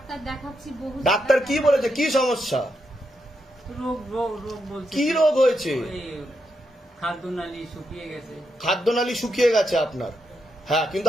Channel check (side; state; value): both; normal; correlation 0.82